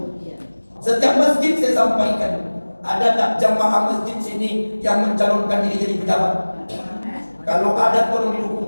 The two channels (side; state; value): both; inverted; correlation -1.00